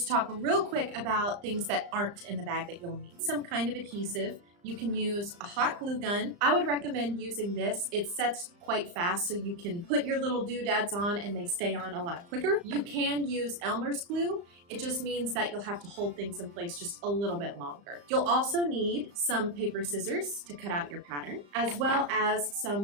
talk real quick about things that aren't in the bag that you'll need. Some kind of adhesive. You can use a hot glue gun. I would recommend using this. It sets quite fast, so you can put your little doodads on and they stay on a lot quicker. You can use Elmer's glue. It just means that you'll have to hold things in place just a little bit longer. You'll also need some paper scissors to cut out your pattern, as well as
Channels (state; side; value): late; left; 35 ms